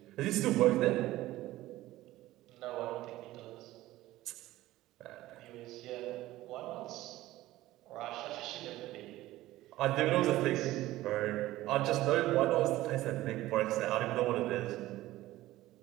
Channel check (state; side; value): quieter; left; 16.3 dB